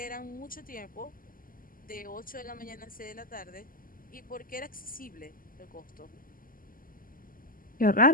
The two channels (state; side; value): late; right; 0.41 ms